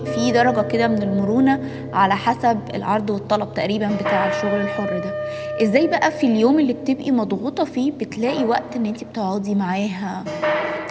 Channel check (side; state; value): both; identical; correlation 1.00